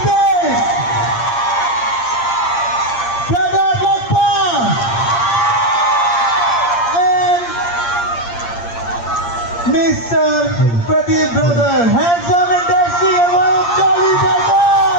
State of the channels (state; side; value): late; right; 8.6 ms